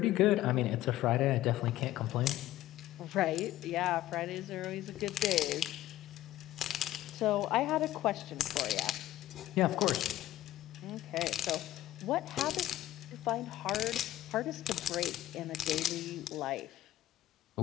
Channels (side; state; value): right; quieter; 14.4 dB